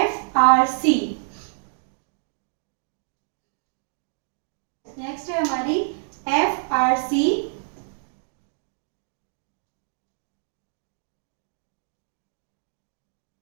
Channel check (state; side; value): silent; left; digital silence